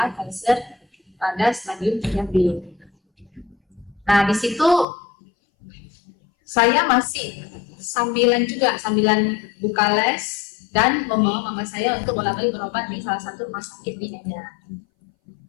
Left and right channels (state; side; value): drops out; right; at 4.9 s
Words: kanker pada stadium 3B. Nah, di situ saya masih sambilan buka les dan membawa mama saya untuk bolak-balik berobat di salah satu rumah sakit di Medan.